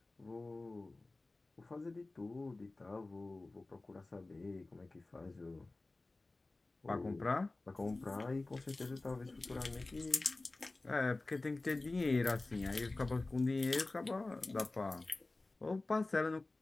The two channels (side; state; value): right; quieter; 3.1 dB